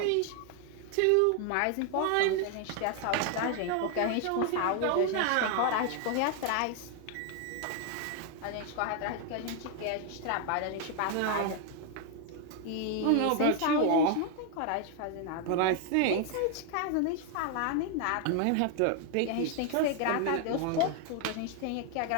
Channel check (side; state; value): both; different; correlation 0.00